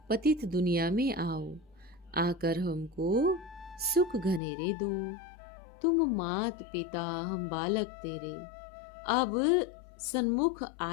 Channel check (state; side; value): drops out; right; at 4.4 s